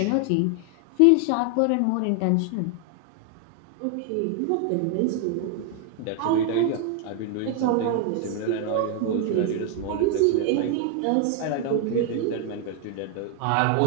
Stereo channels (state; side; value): different; both; correlation 0.00